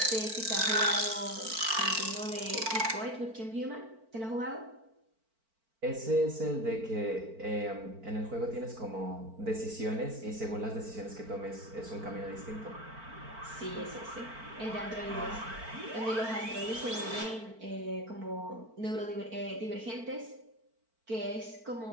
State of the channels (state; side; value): late; left; 4.4 ms